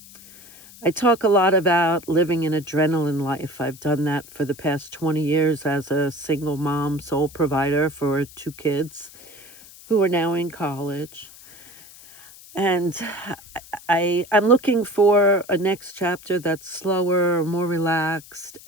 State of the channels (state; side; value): noise; left; hiss, 20 dB below the sound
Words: I talk a lot about living an adrenaline life. I've done that for the past 20 years as a single mom, sole provider for 2 kids who are now in college. And I'm looking for a next chapter that's slower, more relaxed,